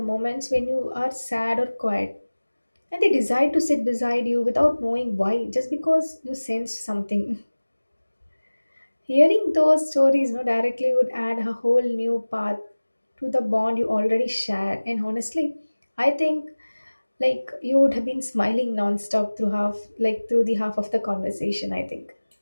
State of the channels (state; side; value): inverted; both; correlation -1.00